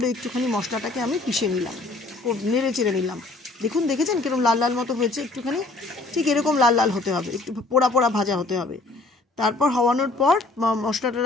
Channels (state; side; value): quieter; right; 3.2 dB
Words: একটুখানি মশলাটাকে আমি পিষে নিলাম, নেড়ে চেড়ে নিলাম। দেখুন, দেখেছেন কিরকম লাল লাল মতো হয়েছে, একটুখানি ঠিক এরকম লাল লাল হতে হবে, একটু পোড়া পোড়া ভাজা হতে হবে। তারপর হওয়ানোর পর মশলাটা